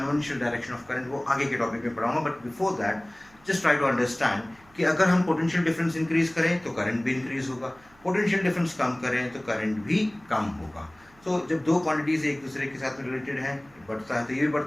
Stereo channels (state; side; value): noise; right; hum, 29 dB below the sound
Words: direction of current वो आगे के टॉपिक में पढ़ाऊंगा. But before that just try to understand कि अगर हम पोटेंशियल डिफरेंस इंक्रीज करें तो करंट भी इंक्रीज होगा, पोटेंशियल डिफरेंस कम करें तो करंट भी कम होगा. सो जब दो क्वांटिटीज एक दूसरे के साथ रिलेटेड है, बढ़ता है तो ये भी